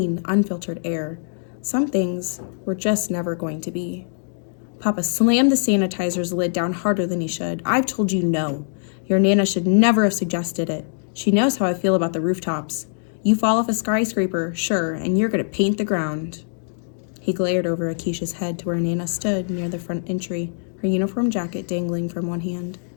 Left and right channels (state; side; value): silent; right; digital silence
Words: unfiltered air. Some things were just never going to be. Papa slammed the sanitizer's lid down harder than he should. I've told you no. Your Nana should never have suggested it. She knows how I feel about the rooftops. You fall off a skyscraper, sure, and you're going to paint the ground. He glared over Akeisha's head to where Nana stood near the front entry, her uniform jacket dangling from one hand.